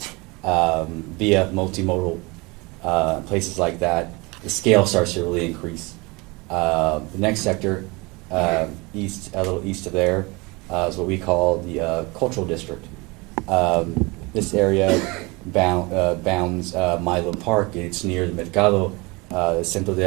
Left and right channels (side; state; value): left; quieter; 25.9 dB